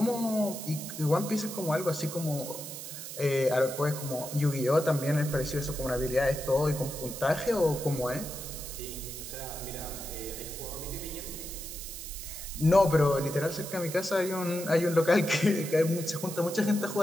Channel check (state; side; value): noise; right; hiss, 9 dB below the sound